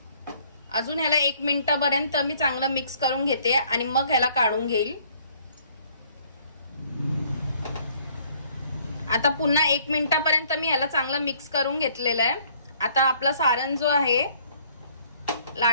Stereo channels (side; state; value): both; inverted; correlation -0.60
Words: अजून ह्याला 1 मिनिटापर्यंत मी चांगलं मिक्स करून घेते आणि मग ह्याला काढून घेईल. आता पुन्हा 1 मिनिटापर्यंत मी ह्याला चांगलं मिक्स करून घेतलेलं आहे. आता आपला सारण जो आहे